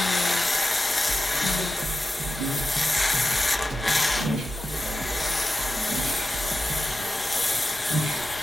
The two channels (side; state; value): both; normal; correlation 0.92